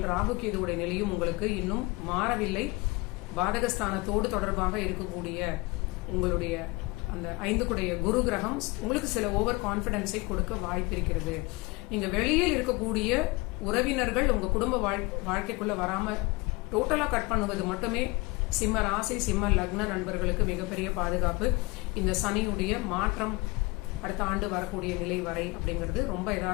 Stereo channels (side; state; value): right; quieter; 24.4 dB